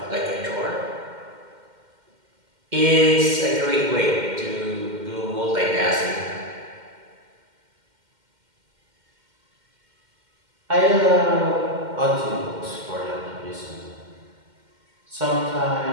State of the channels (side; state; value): left; late; 2.1 ms